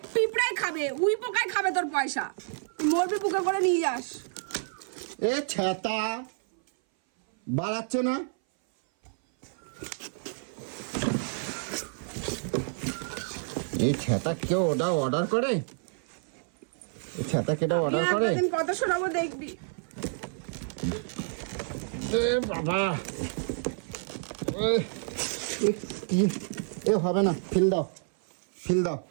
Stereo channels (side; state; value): left; silent; 57 dB below the other